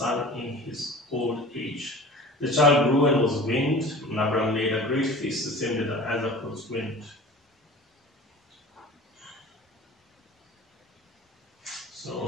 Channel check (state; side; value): normal; both; correlation 0.39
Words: in his old age. The child grew and was weaned, and Abraham made a great feast, the same day that Isaac was weaned.